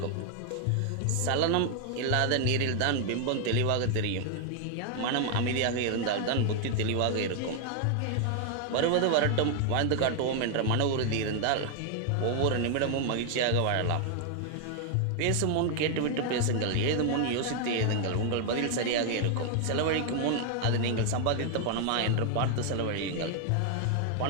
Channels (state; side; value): different; both; correlation 0.00